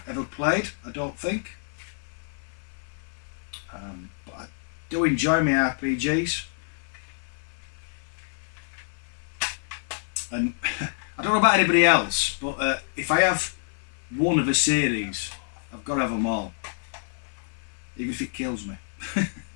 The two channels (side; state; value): right; silent; digital silence